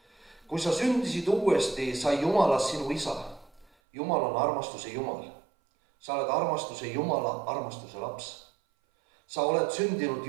Kui sa sündisid uuesti, sai Jumalast sinu isa. Jumal on armastuse Jumal. Sa oled armastuse Jumala armastuse laps. Sa oled sündinud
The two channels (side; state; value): left; drops out; at 3.7 s